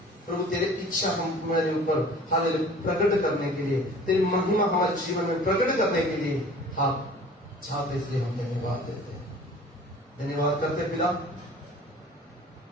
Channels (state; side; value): normal; both; correlation 0.46